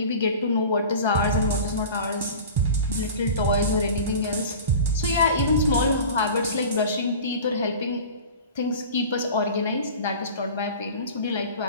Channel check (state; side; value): inverted; both; correlation -0.37